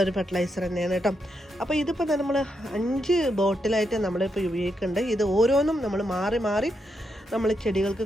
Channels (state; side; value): normal; both; correlation 0.82